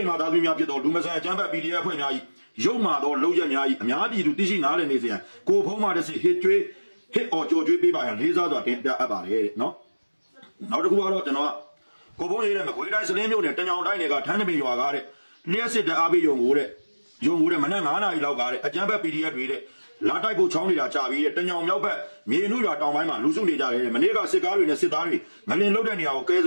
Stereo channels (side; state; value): both; inverted; correlation -1.00